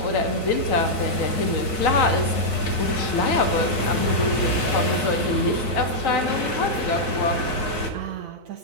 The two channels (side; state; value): left; late; 4.0 ms